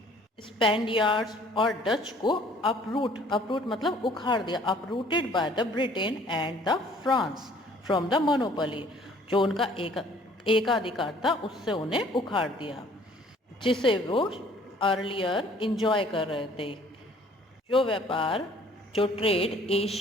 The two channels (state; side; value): normal; both; correlation 0.56